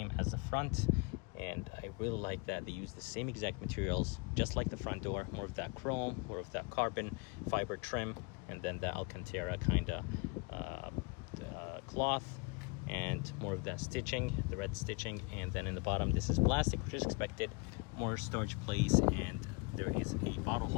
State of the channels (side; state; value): right; quieter; 29.0 dB